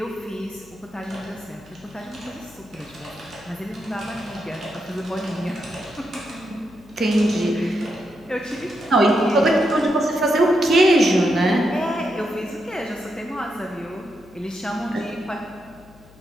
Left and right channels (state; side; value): noise; left; hum, 25 dB below the sound